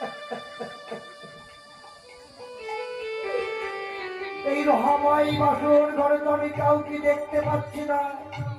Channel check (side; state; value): both; identical; correlation 1.00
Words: আমার এই বাসর ঘরে তো আমি কাউকে দেখতে পাচ্ছি না,